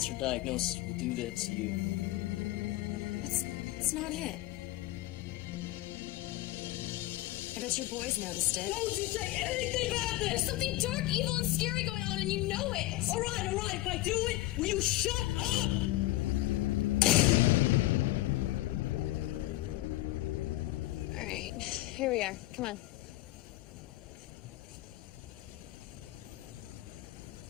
diagnosis will do that to you. It's not it. I bet your boys noticed it. Don't you say anything about this! There's something dark, evil, and scary going on, and you know it! All right, if I do it, will you shut up? All right, here we are. Come on.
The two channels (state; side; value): quieter; right; 17.3 dB